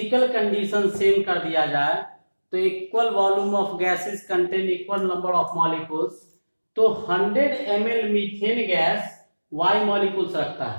कंडीशन सेम कर दिया जाए तो equal volume of gases contain equal number of molecules, तो 100 ml methane gas y molecules रखता है,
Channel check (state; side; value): inverted; both; correlation -1.00